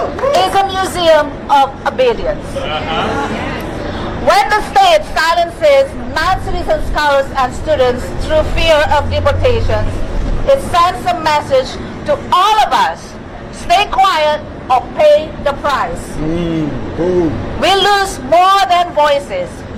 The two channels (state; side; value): identical; both; correlation 1.00